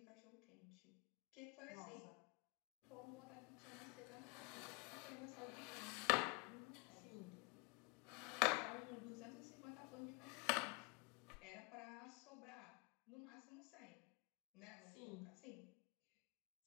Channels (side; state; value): right; quieter; 30.1 dB